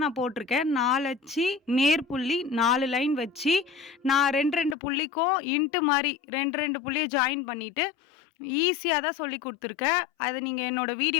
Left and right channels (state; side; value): drops out; right; at 4.8 s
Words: நான் போட்டிருக்கேன். 4 அச்சு நேர்புள்ளி 4 லைன் வச்சு நான் 2 புள்ளிக்கும் இன்ட்டு மாதிரி 2 புள்ளியை ஜாயின் பண்ணிவிட்டு ஈஸியாக தான் சொல்லி கொடுத்துருக்கேன். அதை நீங்கள் என்னோடய